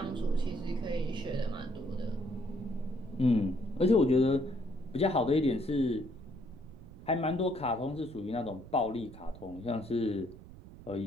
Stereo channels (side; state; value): right; noise; rumble, 17 dB below the sound